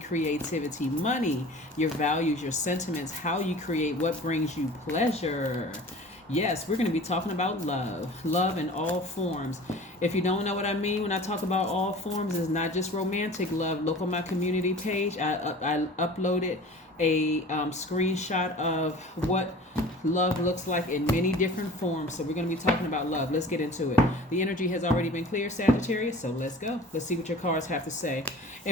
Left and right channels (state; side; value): normal; both; correlation 0.42